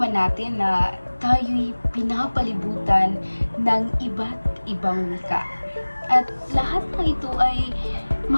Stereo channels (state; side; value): inverted; both; correlation -1.00